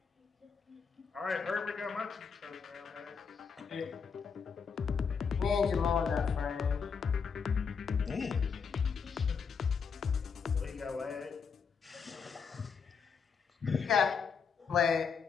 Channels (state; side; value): quieter; right; 6.0 dB